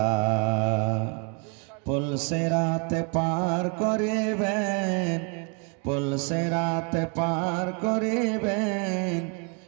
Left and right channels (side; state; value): left; quieter; 34.8 dB